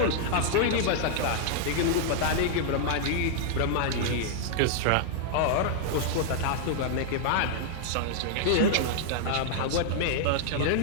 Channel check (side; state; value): both; different; correlation -0.01